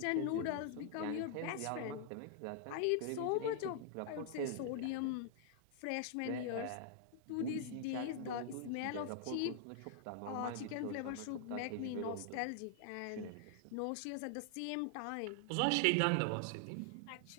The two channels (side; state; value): both; different; correlation 0.00